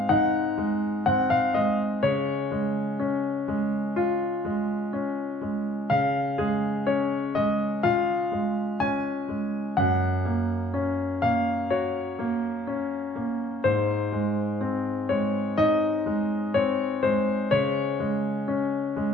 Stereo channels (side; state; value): both; normal; correlation 0.62